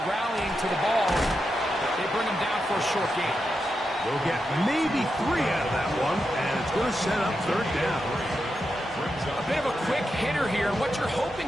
rallying to the ball. They bring him down for a short gain. We'll get maybe 3 out of that one, and it's going to set up 3rd down. A bit of a quick hitter here, and what you're hoping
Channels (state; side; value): normal; both; correlation 0.87